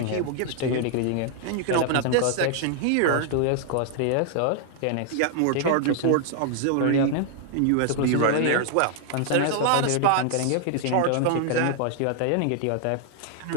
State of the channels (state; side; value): different; both; correlation 0.00